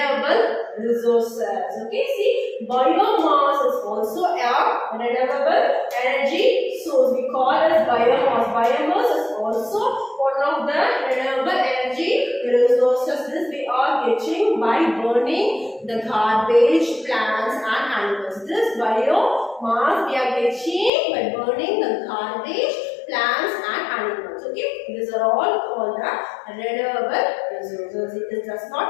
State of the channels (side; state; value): right; drops out; at 20.9 s